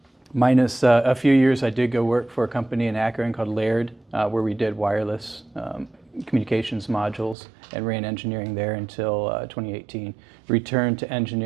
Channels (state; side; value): drops out; left; at 7.4 s